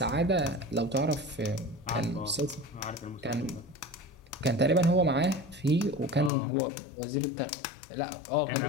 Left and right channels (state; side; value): drops out; right; at 6.3 s